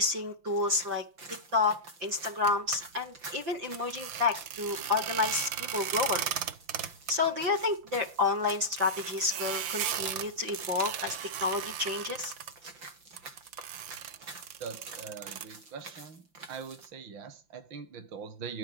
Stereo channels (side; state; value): left; late; 5.8 ms